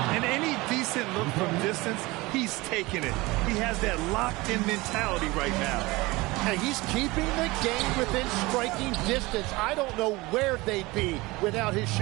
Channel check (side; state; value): left; quieter; 21.9 dB